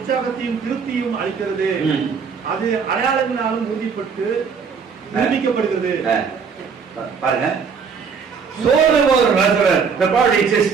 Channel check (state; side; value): quieter; left; 5.9 dB